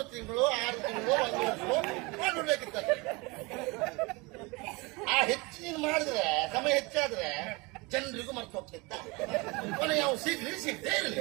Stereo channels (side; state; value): left; quieter; 25.9 dB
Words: ತಿಂಗಳು 6 ತಿಂಗಳು 1 ವರ್ಷ ಮಾಡ್ಬಿಡ್ಬೇಕಿತ್ತ. ಆ ಹೆಚ್ಚು ನೀನು ಮಾಡಿದ್ರೆ ಸಮಯ ಹೆಚ್ಚಾದ್ರೆ ಜನರಿಗೂ ಮರ್ತು ಹೋಗ್ತಿತ್ತ. ಕೊನೆ ಯಾವ ಸಿಗದೇ ಇರಲಿ.